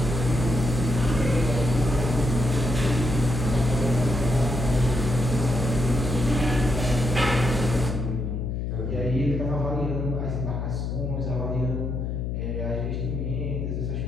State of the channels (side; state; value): left; noise; hum, 2 dB below the sound